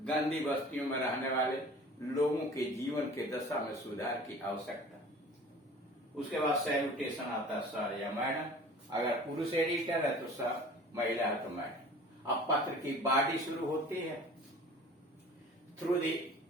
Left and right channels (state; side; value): normal; both; correlation 0.44